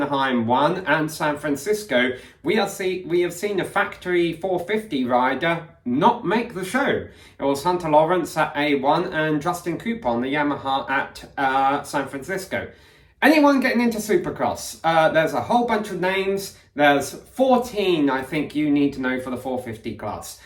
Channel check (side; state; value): both; identical; correlation 1.00